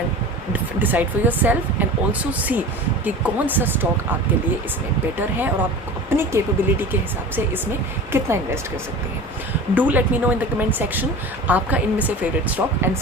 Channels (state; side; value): normal; both; correlation 0.35